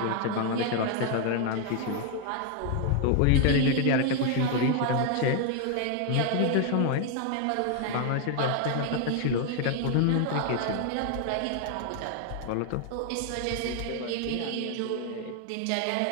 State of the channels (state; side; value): different; both; correlation 0.00